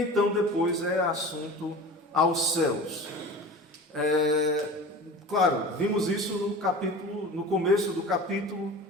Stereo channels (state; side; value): normal; both; correlation 0.36